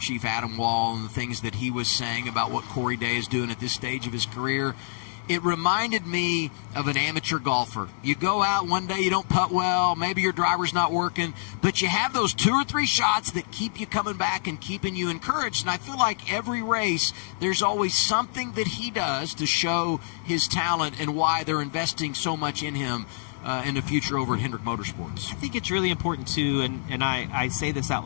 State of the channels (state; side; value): silent; right; digital silence